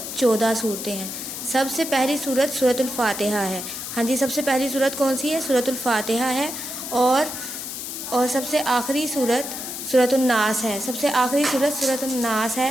सूरतें हैं। सबसे पहली सूरत सूरतुल फातिहा है। हाँ जी, सबसे पहली सूरत कौन सी है? सूरतुल फातिहा है। और सबसे आखिरी सूरत सूरतुन नास है। सबसे आखिरी सूरत सूरतुन नास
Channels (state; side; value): noise; left; hiss, 7 dB below the sound